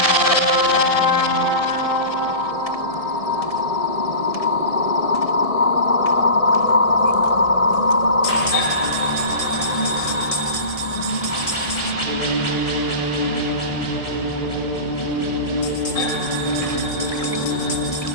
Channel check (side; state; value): right; late; 1.7 ms